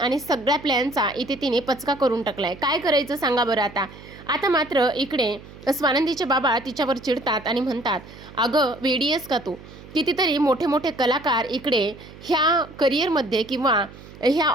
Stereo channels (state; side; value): noise; right; hum, 18 dB below the sound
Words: सगळ्या प्लॅनचा इथे तिने पचका करून टाकलाय. काय करायचं सांगा बरं आता? आता मात्र इकडे स्वानंदीचे बाबा तिच्यावर चिडतात आणि म्हणतात, अगं वेडी आहेस का तू? कितीतरी मोठे मोठे कलाकार इकडे ह्या करिअरमध्ये किंवा ह्या